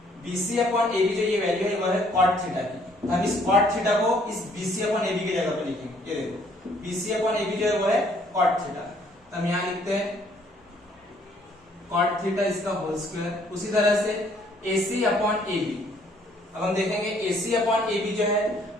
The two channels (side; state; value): both; normal; correlation 0.63